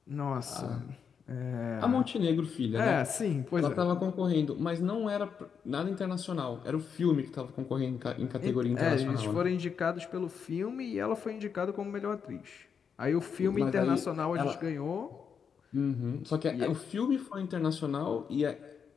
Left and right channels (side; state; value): right; quieter; 6.7 dB